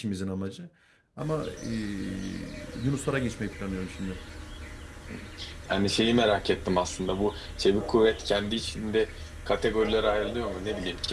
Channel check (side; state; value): both; identical; correlation 1.00